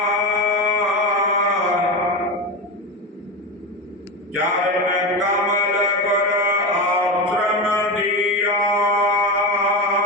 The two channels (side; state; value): both; normal; correlation 0.20